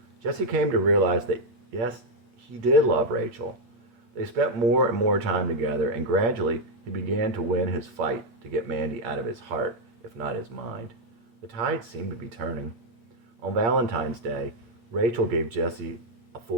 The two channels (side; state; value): left; late; 8.4 ms